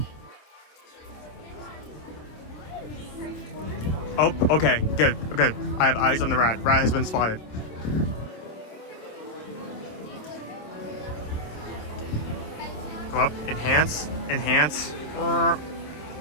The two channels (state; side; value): late; right; 27 ms